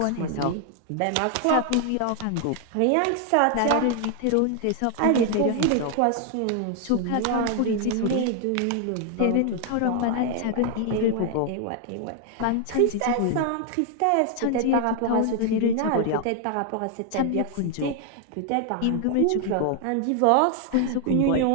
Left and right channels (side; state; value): both; different; correlation 0.00